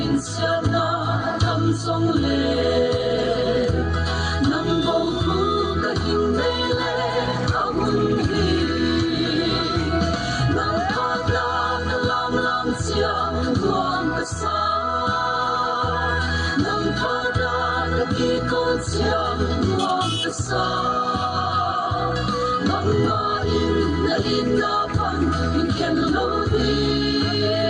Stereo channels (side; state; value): both; identical; correlation 1.00